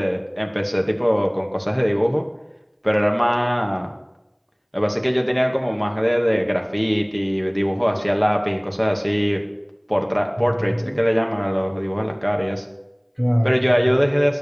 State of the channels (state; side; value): identical; both; correlation 1.00